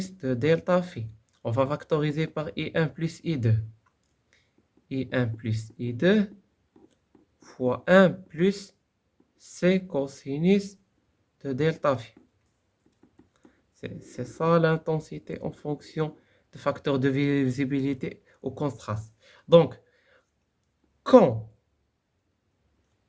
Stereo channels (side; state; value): both; identical; correlation 1.00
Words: de delta phi. On va factoriser par I1 plus I2. I1 plus I2 fois 1 plus C cosinus de delta phi. C'est ça l'intensité en fonction de facteurs de visibilité au contraste. Donc, quand